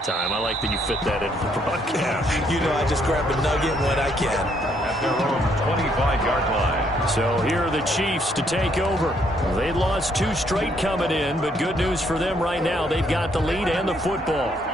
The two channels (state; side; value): normal; both; correlation 0.70